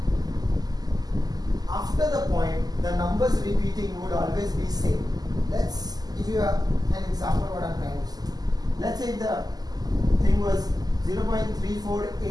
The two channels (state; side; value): late; left; 0.19 ms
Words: after the point, the numbers repeating would always be same. Let's give you an example what I'm trying to say. Let's say the thing was